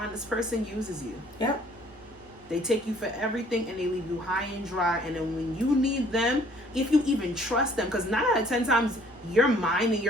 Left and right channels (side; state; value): both; normal; correlation 0.58